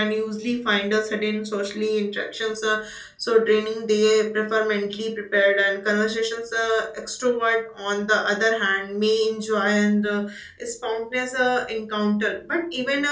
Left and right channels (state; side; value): identical; both; correlation 1.00